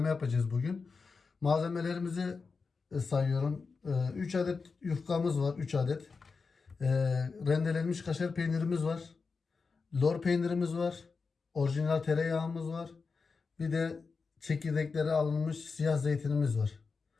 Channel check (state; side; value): quieter; right; 4.7 dB